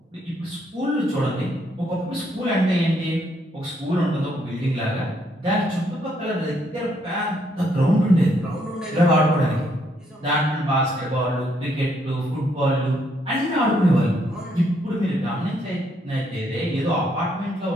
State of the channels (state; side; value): normal; both; correlation 0.72